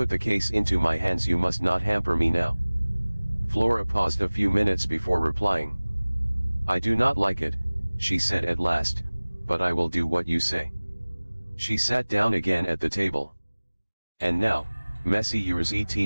the case into my hands, you must not hamper me now. Flora paused a few minutes before replying. I do not like it, she said at last, but I will do what you say. She sat down again at the table. And now, Messieurs et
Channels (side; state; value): both; inverted; correlation -1.00